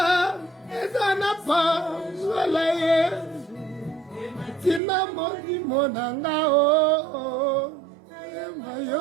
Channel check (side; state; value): left; drops out; at 4.8 s